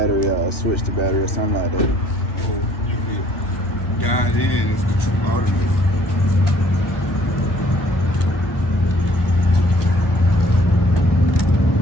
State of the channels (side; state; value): right; late; 1.2 ms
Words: out or switch the battery or something like that. Or you could dial in, it's the true alternator.